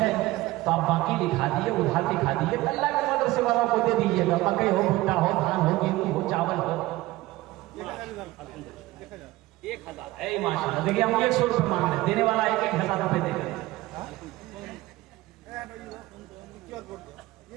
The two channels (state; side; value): quieter; left; 18.3 dB